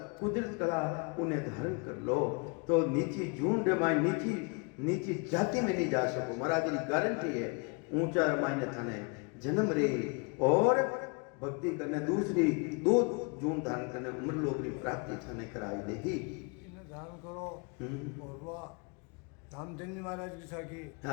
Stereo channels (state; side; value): quieter; right; 33.5 dB